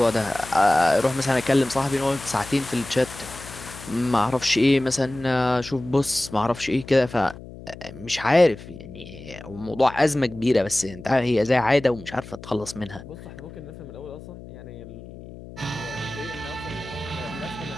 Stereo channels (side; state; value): left; noise; hum, 15 dB below the sound